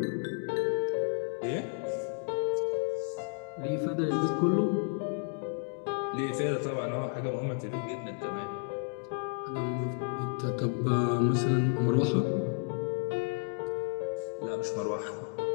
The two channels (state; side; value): silent; right; 57 dB below the other